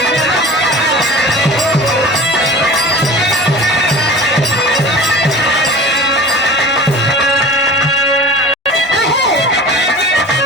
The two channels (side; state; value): both; normal; correlation 0.39